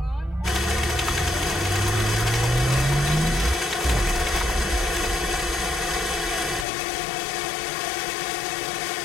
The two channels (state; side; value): drops out; right; at 6.7 s